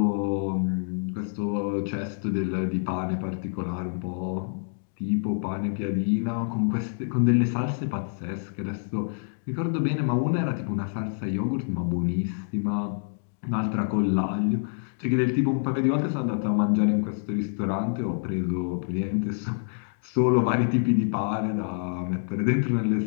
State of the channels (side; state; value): right; silent; digital silence